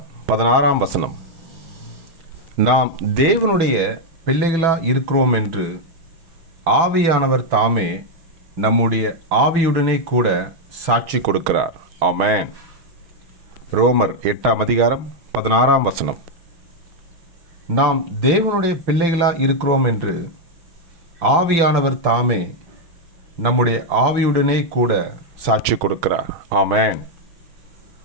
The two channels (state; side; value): late; left; 6.0 ms